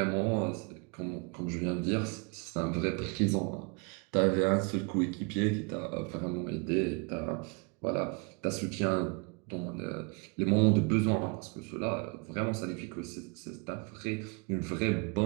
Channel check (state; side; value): quieter; left; 32.6 dB